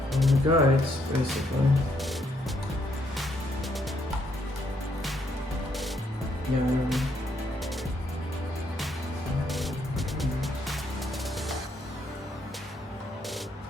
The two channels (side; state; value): both; normal; correlation 0.73